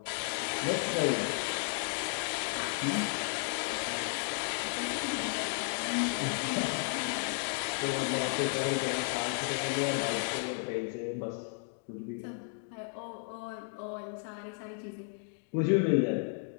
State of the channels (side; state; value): right; silent; 55 dB below the other